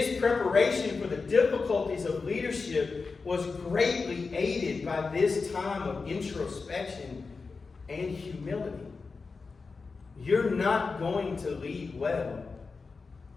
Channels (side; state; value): right; quieter; 4.4 dB